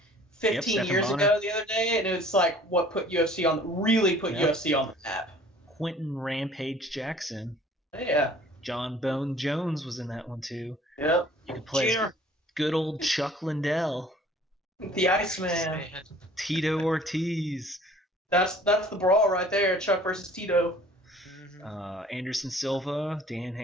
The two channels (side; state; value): both; normal; correlation 0.52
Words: 15 years ago the other day, and it was like what put UFC UFC on the map. Quentin Rampage Jackson. Yeah. John Bone Jones was in that one too. Yep. You could play good old Chuck Liddell. The Iceman. Tito Ortiz. That's the brawl right there, Chuck versus Tito. Anderson Silva, Dan